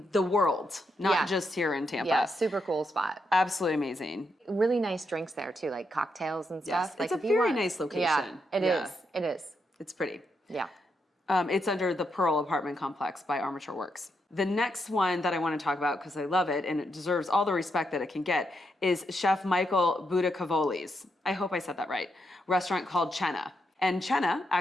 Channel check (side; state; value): both; normal; correlation 0.81